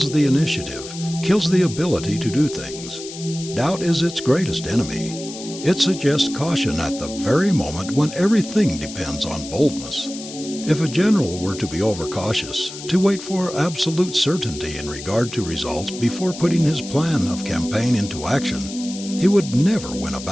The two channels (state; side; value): noise; left; hiss, 12 dB below the sound